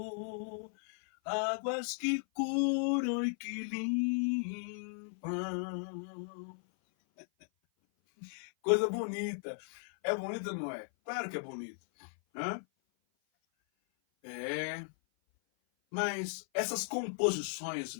águas que curam e que limpam. Coisa bonita. É bonita, não é? Claro que é bonito. Hã? É. Mas essas composições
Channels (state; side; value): silent; right; 54 dB below the other